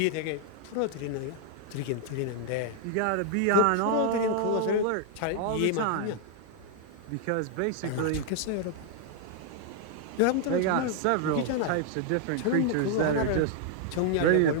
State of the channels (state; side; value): different; both; correlation -0.01